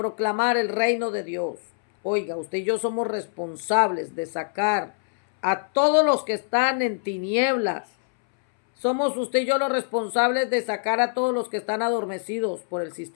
el reino de Dios. Oiga, usted y yo somos responsables de sacar a todos los que están en tinieblas. Somos usted y yo los responsables de sacar a todos los que están adormecidos por el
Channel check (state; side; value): silent; right; 62 dB below the other